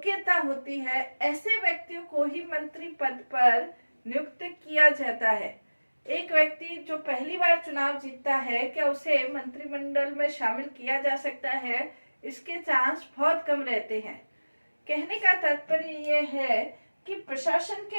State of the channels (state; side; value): inverted; both; correlation -1.00